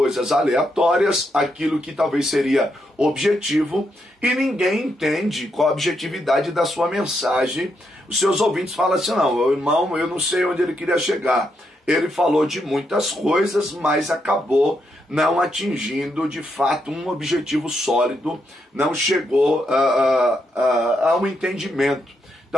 aleatórias, aquilo que talvez seria objetivo, e ninguém entende qual a objetividade da sua mensagem. Os seus ouvintes falam assim, não, irmão, eu não sei onde ele queria chegar. Ele falou de muitas coisas, mas acabou não atingindo de fato um objetivo sólido, não chegou a um entendimento.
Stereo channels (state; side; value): normal; both; correlation 0.80